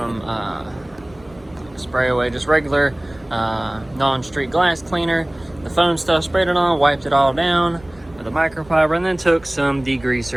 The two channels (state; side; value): noise; right; rumble, 25 dB below the sound